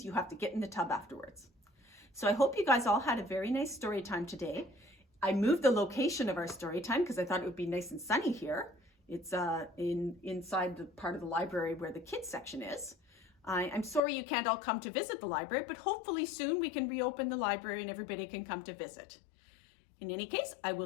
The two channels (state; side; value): drops out; right; at 14.0 s